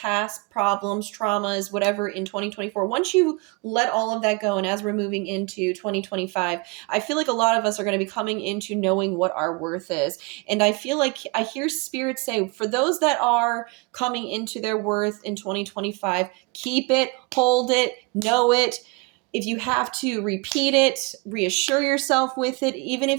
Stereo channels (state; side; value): quieter; left; 28.8 dB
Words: problems, traumas, whatever in 2024, once you let all of that go, and as we're moving into 2025, I feel like a lot of us are going to be coming into knowing what our worth is. And I feel like I hear spirit say, for those that are coming into their worth in 2025, keep it, hold it, know it. If you have to repeat it, reassure yourself with it, even